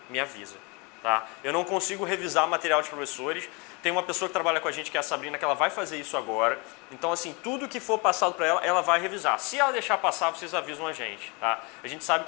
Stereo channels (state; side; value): quieter; right; 29.6 dB